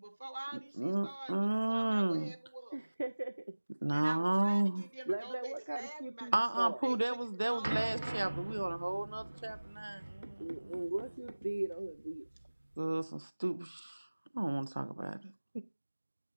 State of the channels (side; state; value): both; inverted; correlation -1.00